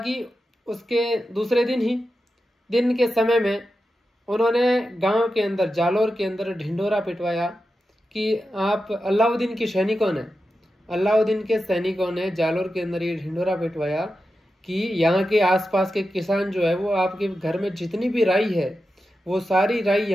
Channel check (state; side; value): normal; both; correlation 0.90